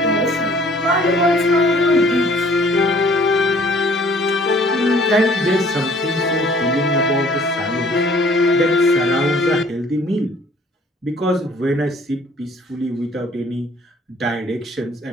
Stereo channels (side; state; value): both; normal; correlation 0.56